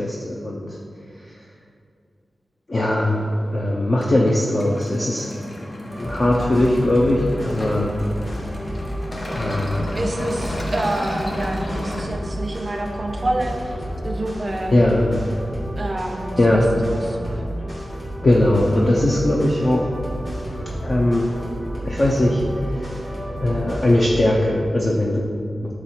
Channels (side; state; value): both; normal; correlation 0.94